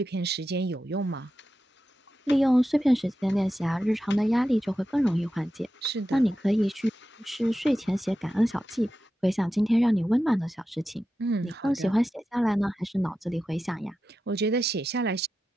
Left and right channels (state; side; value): normal; both; correlation 0.91